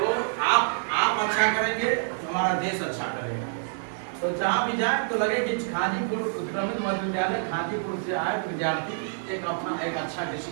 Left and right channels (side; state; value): left; silent; 60 dB below the other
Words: आप अच्छा करेंगे तो हमारा देश अच्छा करेगा। तो जहाँ भी जाए तो लगे कि खाजीपुर उत्क्रमित मध्य विद्यालय खाजीपुर से आए विद्यार्थी एक अच्छा